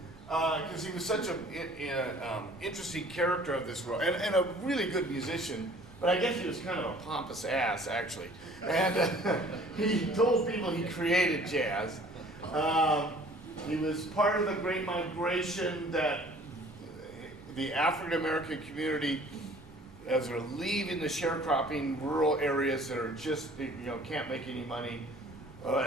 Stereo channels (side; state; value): left; noise; rumble, 23 dB below the sound